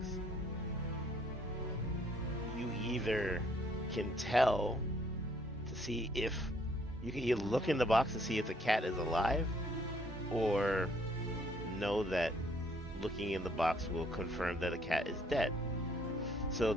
You either can tell to see if you can either look in the box to see if the cat is alive, or know that looking in the box will confirm that the cat is dead. So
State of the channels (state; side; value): normal; both; correlation 0.65